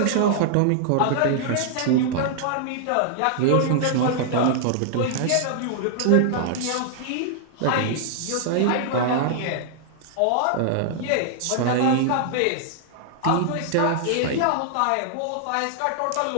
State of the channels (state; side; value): different; both; correlation -0.01